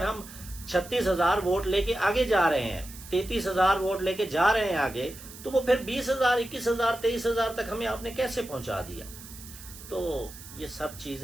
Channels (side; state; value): right; noise; hiss, 16 dB below the sound